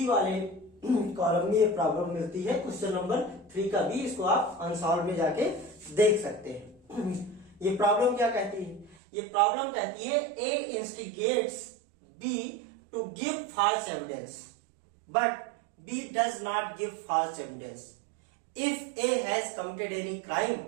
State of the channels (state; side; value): drops out; left; at 9.0 s